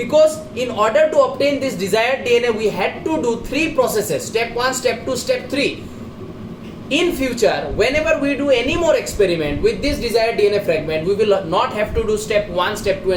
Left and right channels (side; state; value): both; identical; correlation 1.00